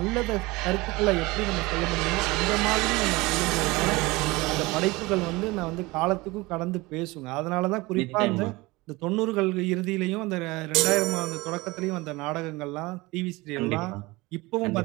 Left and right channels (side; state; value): left; quieter; 22.3 dB